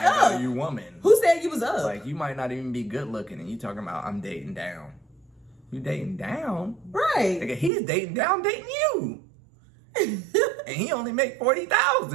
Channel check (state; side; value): drops out; left; at 7.7 s